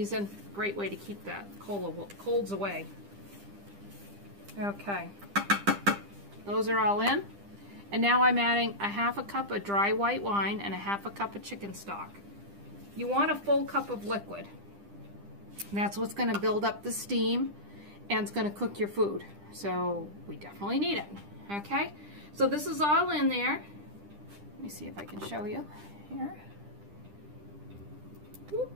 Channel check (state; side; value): late; left; 10 ms